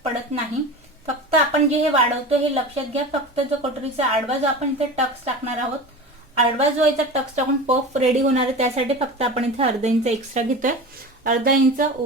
पडत नाही. फक्त आपण जे हे वाढवतो हे लक्षात घ्या. फक्त जो कटोरीचा आडवा जो आपण इथे टक्स टाकणार आहोत, आडवा जो याचा टक्स टाकून पफ रेडी होणार आहे त्यासाठी फक्त आपण इथे अर्धा इंच एक्स्ट्रा घेतोय. अर्धा इंच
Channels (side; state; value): both; normal; correlation 0.31